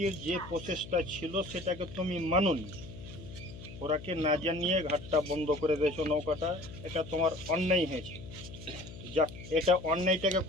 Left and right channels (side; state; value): left; noise; hum, 14 dB below the sound